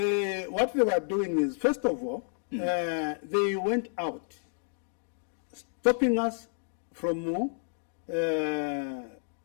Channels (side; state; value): right; silent; digital silence